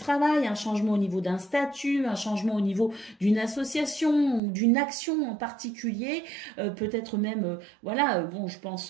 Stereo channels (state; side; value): drops out; left; at 4.4 s